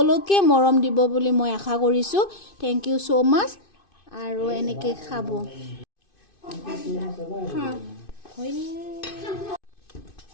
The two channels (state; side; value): late; right; 2.5 ms